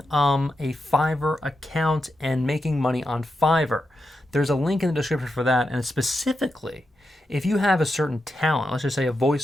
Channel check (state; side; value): normal; both; correlation 0.87